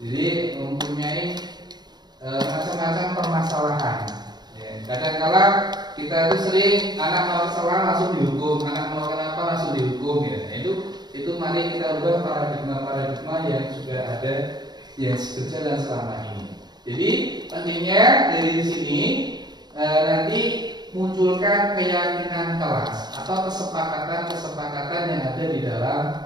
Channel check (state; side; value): late; left; 0.20 ms